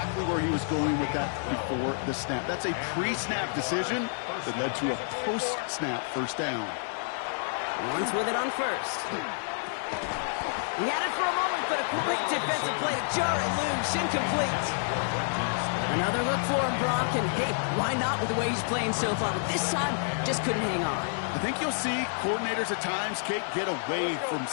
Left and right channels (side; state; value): right; silent; digital silence